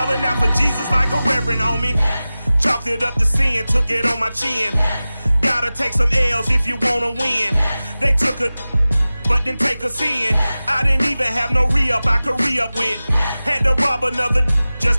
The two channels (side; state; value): both; inverted; correlation -0.97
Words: out for Jesus like a reverend on me. Chalked it up to sin, took it on my chin. Gotta take some L's if you wanna win. They took a but didn't take a sin. I didn't even have no re-up I could re-up with. Had to rob another